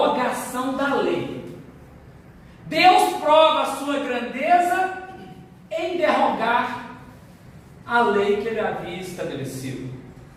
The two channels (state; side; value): identical; both; correlation 1.00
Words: da lei. Deus prova a sua grandeza em derrogar a lei que ele havia estabelecido.